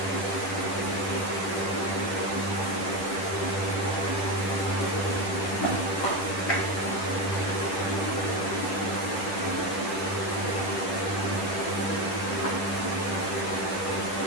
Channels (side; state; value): right; late; 10 ms